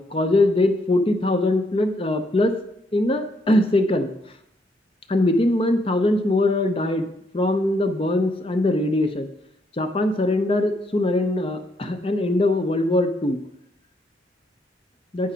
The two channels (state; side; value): normal; both; correlation 0.74